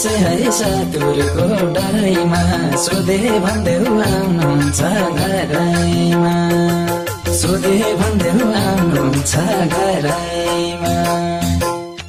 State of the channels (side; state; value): both; identical; correlation 1.00